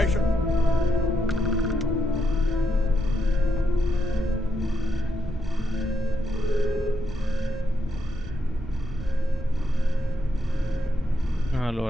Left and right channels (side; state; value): both; normal; correlation 0.81